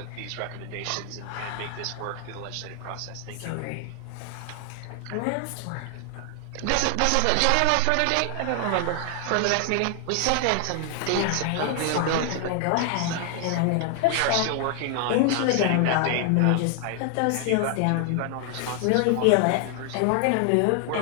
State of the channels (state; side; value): different; both; correlation 0.00